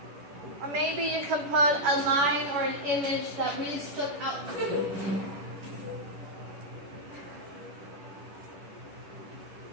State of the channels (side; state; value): left; late; 10 ms